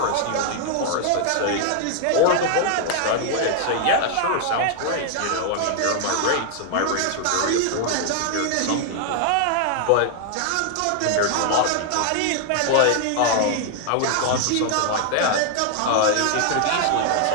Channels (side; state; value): both; different; correlation 0.00